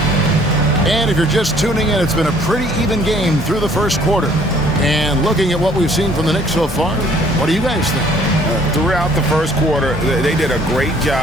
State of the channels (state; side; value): normal; both; correlation 0.59